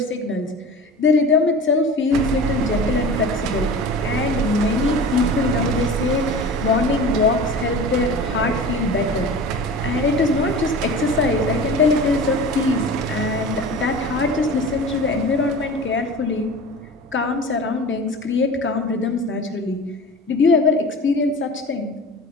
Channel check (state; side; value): normal; both; correlation 0.36